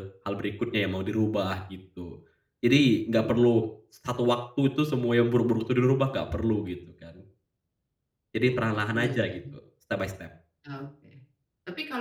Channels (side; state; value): both; identical; correlation 1.00